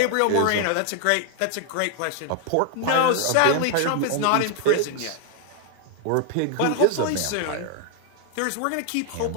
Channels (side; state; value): both; different; correlation 0.00